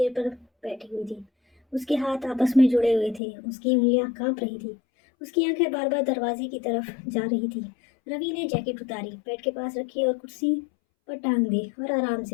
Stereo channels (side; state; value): right; drops out; at 3.2 s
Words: पर बैठी हुई थी। उसके हाथ आपस में जुड़े हुए थे, उसकी उंगलियां कांप रही थी, उसकी आंखें बार बार दरवाजे की तरफ जा रही थी। रवि ने जैकेट उतारी, बेड के पास रखी और कुर्सी पर टांग दी और आराम